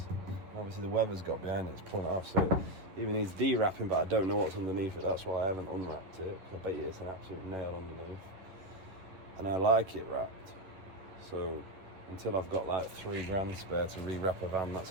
Obviously the weather's got behind it, it's pulling it off, so it even needs de-wrapping, but I don't know what's underneath it. That's why I haven't unwrapped it. I bet you it's an absolute nail underneath. And I like it wrapped. So until I've got like 3 grand spare to re-wrap a van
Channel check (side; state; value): left; late; 11 ms